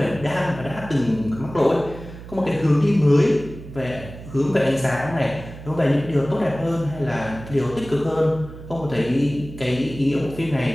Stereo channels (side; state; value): right; noise; hum, 14 dB below the sound